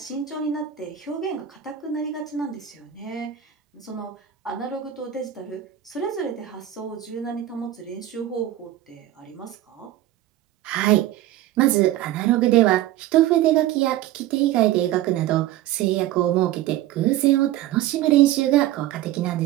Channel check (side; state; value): left; quieter; 13.0 dB